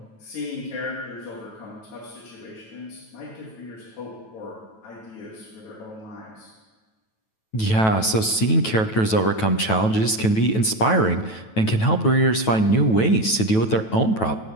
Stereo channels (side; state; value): right; late; 9.2 ms